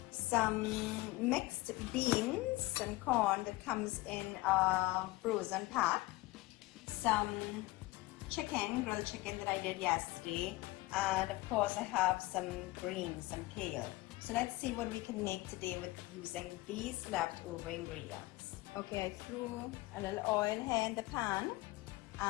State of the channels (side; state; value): right; quieter; 20.3 dB